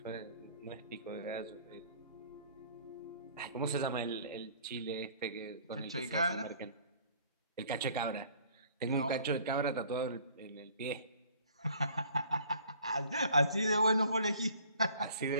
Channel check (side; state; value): both; inverted; correlation -0.54